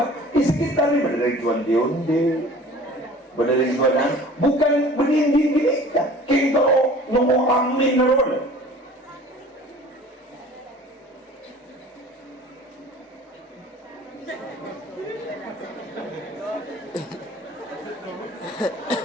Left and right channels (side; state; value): both; normal; correlation 0.46